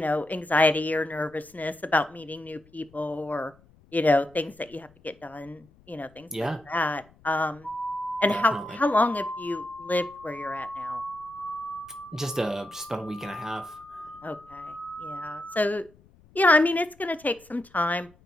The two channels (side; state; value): left; noise; rumble, 28 dB below the sound